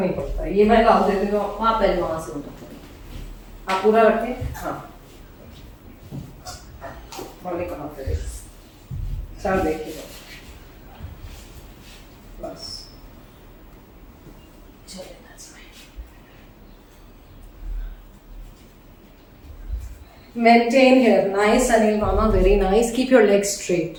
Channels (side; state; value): both; identical; correlation 1.00